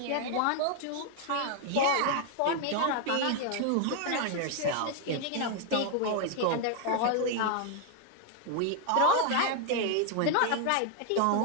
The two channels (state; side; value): different; both; correlation 0.00